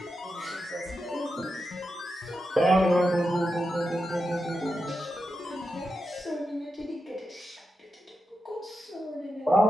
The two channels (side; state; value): both; normal; correlation 0.88